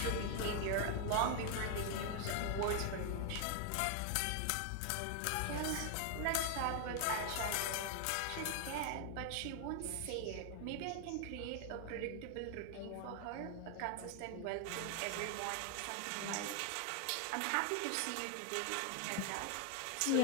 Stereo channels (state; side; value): different; both; correlation 0.00